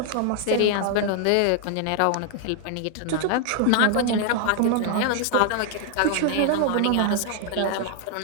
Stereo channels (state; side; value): different; both; correlation 0.00